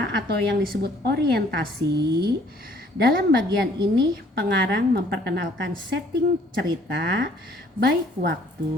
atau yang disebut orientasi. Dalam bagian ini pengarang memperkenalkan setting cerita, baik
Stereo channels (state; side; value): normal; both; correlation 0.59